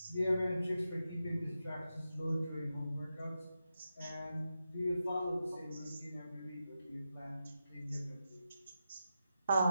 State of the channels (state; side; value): inverted; both; correlation -0.89